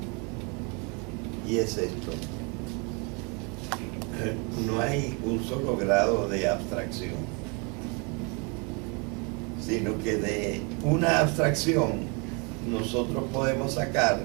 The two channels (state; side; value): quieter; left; 32.6 dB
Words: Y es esto. No hay un solo grado de abstracción, sino que de una abstracción nosotros podemos sacar